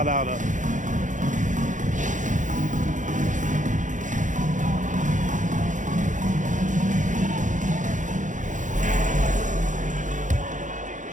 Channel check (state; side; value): late; left; 0.37 ms